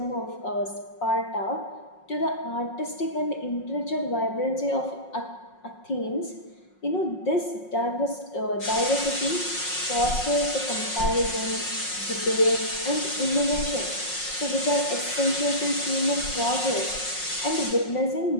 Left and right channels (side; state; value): right; late; 5.5 ms